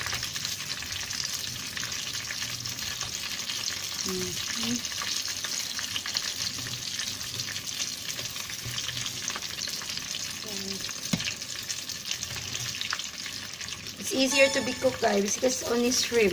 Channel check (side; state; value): both; identical; correlation 1.00